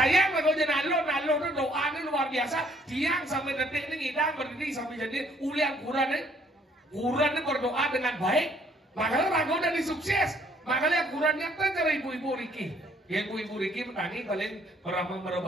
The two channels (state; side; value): normal; both; correlation 0.63